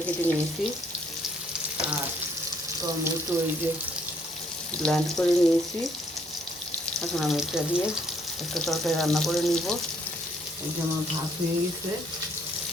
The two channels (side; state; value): both; normal; correlation 0.66